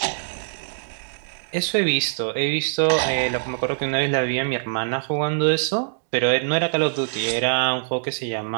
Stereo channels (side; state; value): left; silent; digital silence